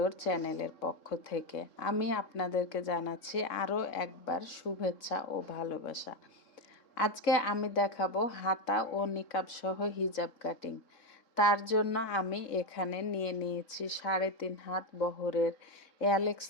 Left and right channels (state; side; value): late; right; 3.6 ms